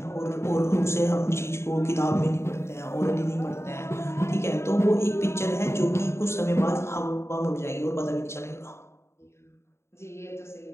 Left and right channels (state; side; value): late; right; 0.13 ms